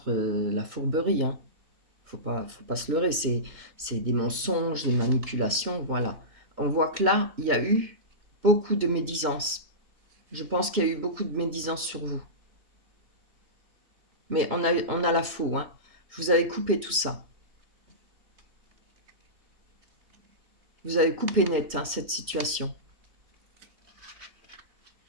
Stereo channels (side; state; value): left; late; 3.0 ms